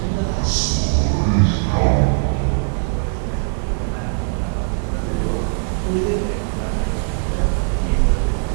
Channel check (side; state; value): left; silent; 56 dB below the other